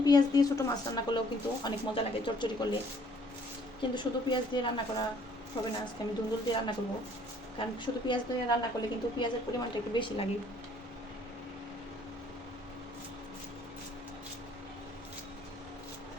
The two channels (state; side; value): normal; both; correlation 0.60